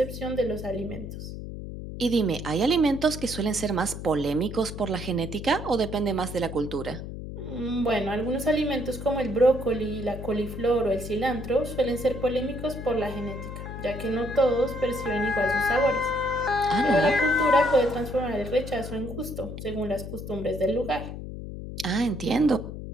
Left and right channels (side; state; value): left; noise; hum, 9 dB below the sound